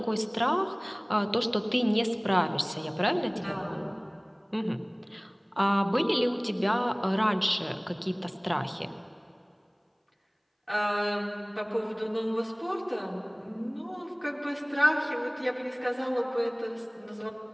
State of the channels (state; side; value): identical; both; correlation 1.00